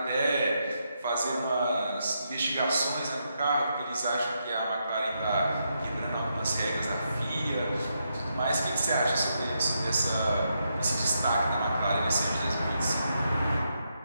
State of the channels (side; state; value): both; inverted; correlation -0.81